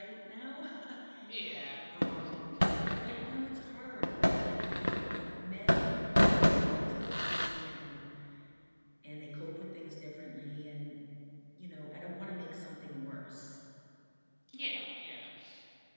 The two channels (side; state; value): both; inverted; correlation -1.00